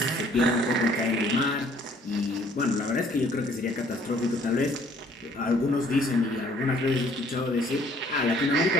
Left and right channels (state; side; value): normal; both; correlation 0.60